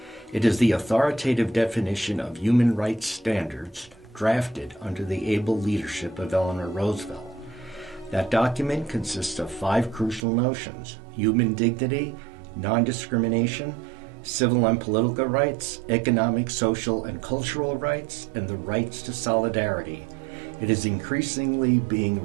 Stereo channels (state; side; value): drops out; left; at 10.2 s